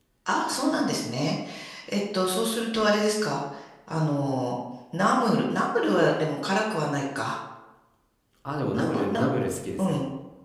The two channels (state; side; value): identical; both; correlation 1.00